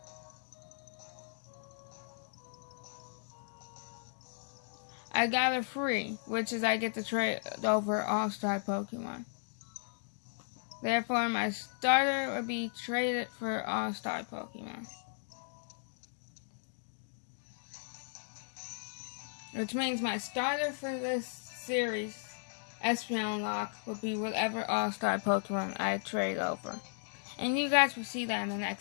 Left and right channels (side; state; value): right; silent; digital silence